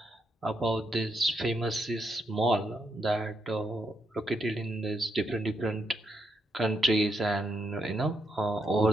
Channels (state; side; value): normal; both; correlation 0.79